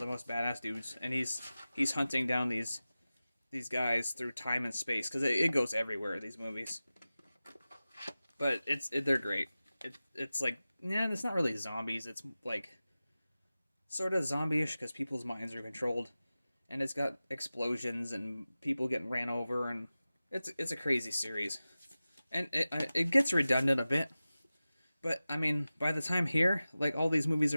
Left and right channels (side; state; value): both; inverted; correlation -0.96